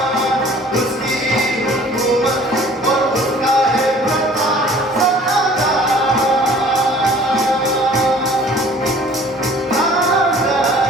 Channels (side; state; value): both; normal; correlation 0.51